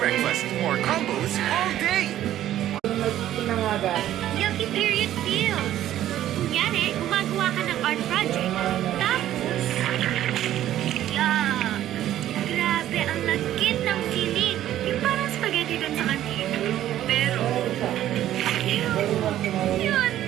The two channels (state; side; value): quieter; left; 12.6 dB